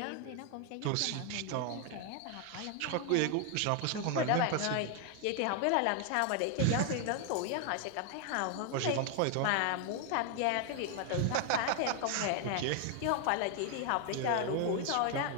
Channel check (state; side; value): different; both; correlation 0.00